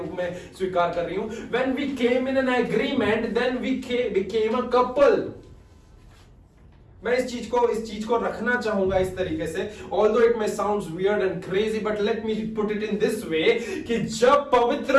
में स्वीकार कर रही हूं। When we came in an agreement, then we became a couple. मैं इस चीज को रखना चाहूंगा इस तरीके से, although it may sounds weird and crazy, but let me put it in this way कि जब पवित्र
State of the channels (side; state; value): both; identical; correlation 1.00